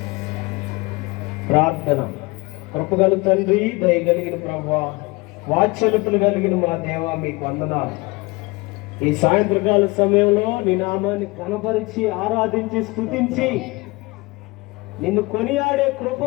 ప్రార్థన. కృపగల తండ్రి, దయగలిగిన ప్రభువా, వాత్సల్యతలు కలిగిన మా దేవా, మీకు వందనాలు. ఈ సాయంత్రకాల సమయంలో నీ నామాన్ని కనపరిచి ఆరాధించి స్తుతించి నిన్ను కొనియాడే కృప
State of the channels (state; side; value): quieter; right; 24.3 dB